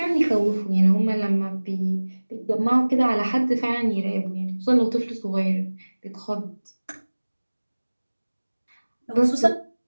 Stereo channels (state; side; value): inverted; both; correlation -1.00